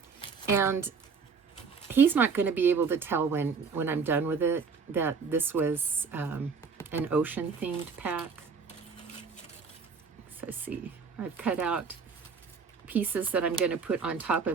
And he's not going to be able to tell when I'm done with it that this was an ocean-themed pack. So see, I've cut out pieces that I'm going to put on top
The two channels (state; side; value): quieter; left; 5.4 dB